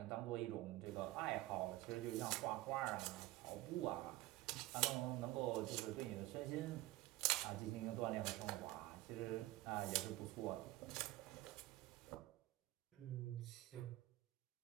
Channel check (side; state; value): left; quieter; 17.9 dB